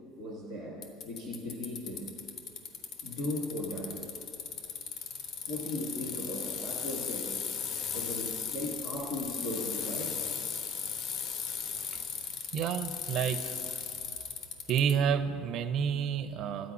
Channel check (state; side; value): normal; both; correlation 0.48